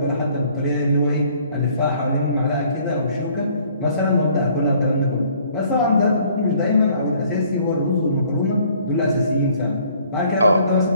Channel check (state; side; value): inverted; both; correlation -0.59